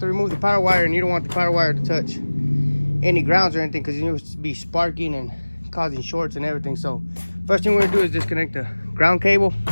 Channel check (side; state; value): both; inverted; correlation -1.00